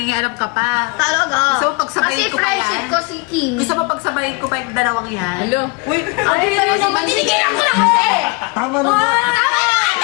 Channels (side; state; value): right; quieter; 29.5 dB